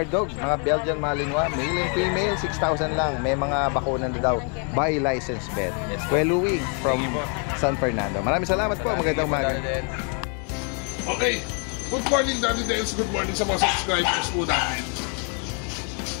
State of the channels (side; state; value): right; quieter; 39.8 dB